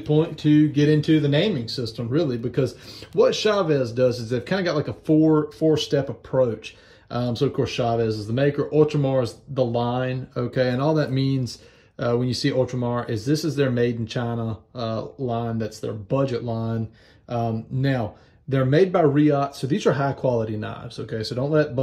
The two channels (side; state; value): both; identical; correlation 1.00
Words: point to get into the naming system, really, because what Chaves does is they've kind of got like a four-step approach. So of course, Chaves is the maker. Ultramar is the line. Okay, and all that means, when you see Ultramar, is this is their made in China line. That's their budget line. Now, they're made by Riot, so these are high quality knives, okay? So don't let